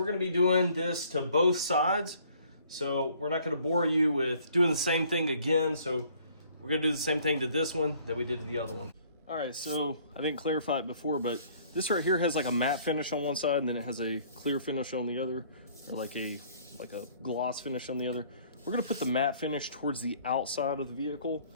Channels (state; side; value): inverted; both; correlation -0.58